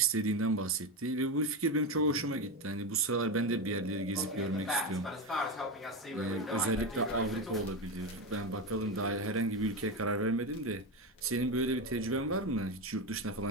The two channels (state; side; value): normal; both; correlation 0.15